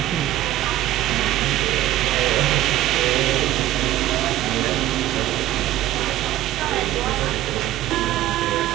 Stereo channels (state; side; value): quieter; left; 14.4 dB